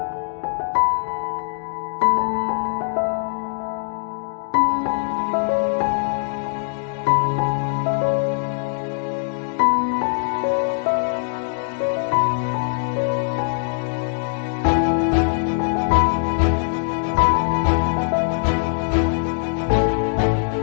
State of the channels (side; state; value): right; silent; digital silence